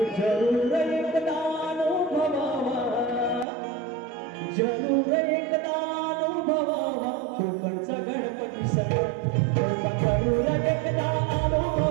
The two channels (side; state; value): left; drops out; at 3.5 s